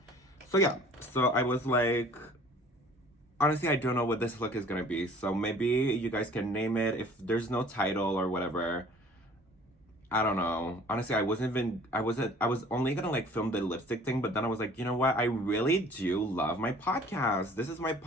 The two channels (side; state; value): both; normal; correlation 0.51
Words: So yeah, so I was like, honestly, I don't know what this look is gonna be. So maybe you guys can name it. If there's no title or whatever, I don't know. Honestly, I was only gonna like film the lipstick thing, but then I was like, you know what? I really do love my podcast. This is my